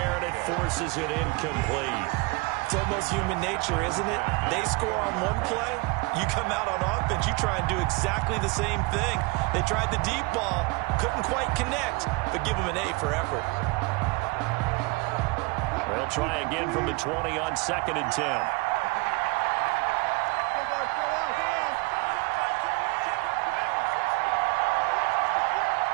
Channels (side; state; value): left; quieter; 26.2 dB